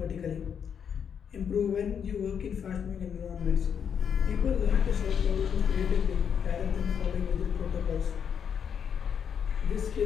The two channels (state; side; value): quieter; right; 7.6 dB